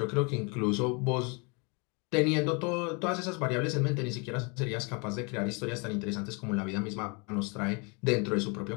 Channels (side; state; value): right; quieter; 32.1 dB